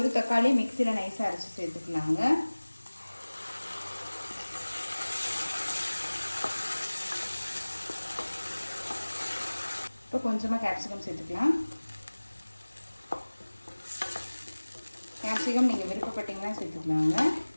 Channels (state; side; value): inverted; both; correlation -1.00